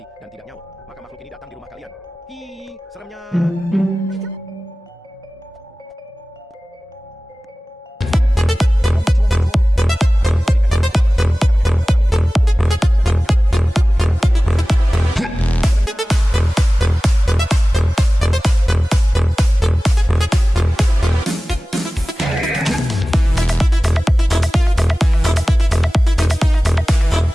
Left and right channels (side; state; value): both; normal; correlation 0.97